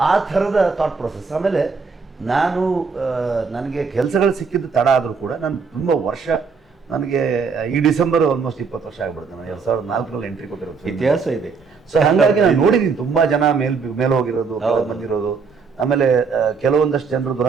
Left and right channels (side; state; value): left; quieter; 5.2 dB